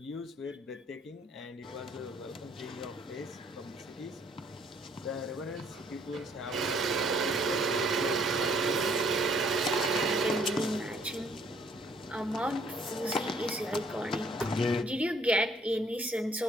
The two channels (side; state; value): both; normal; correlation 0.63